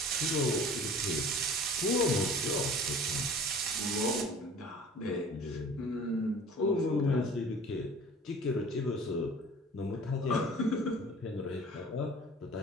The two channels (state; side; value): normal; both; correlation 0.45